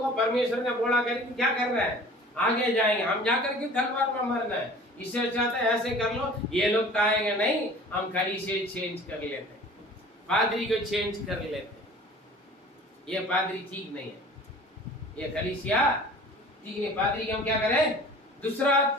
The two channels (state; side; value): normal; both; correlation 0.45